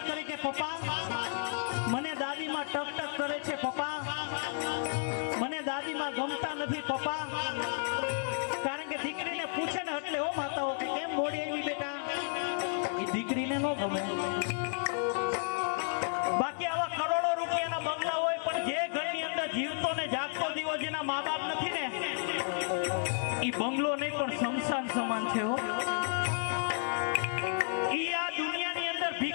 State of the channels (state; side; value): silent; right; digital silence